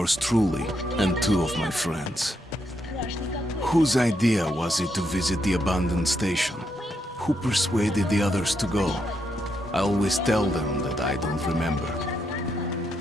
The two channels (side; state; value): both; normal; correlation 0.80